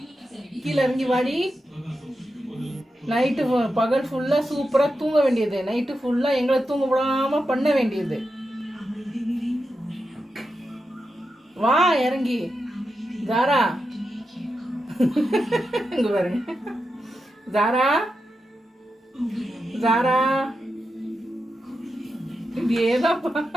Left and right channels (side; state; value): both; normal; correlation 0.88